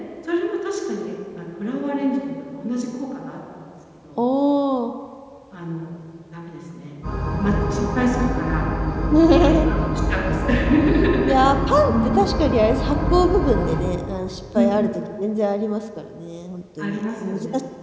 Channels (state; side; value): identical; both; correlation 1.00